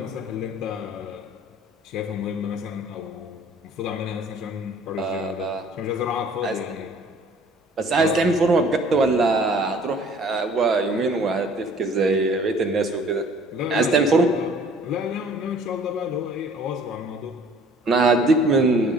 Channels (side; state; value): both; normal; correlation 0.53